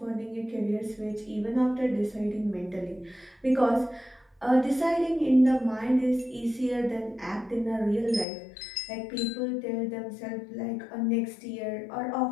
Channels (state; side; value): drops out; right; at 8.2 s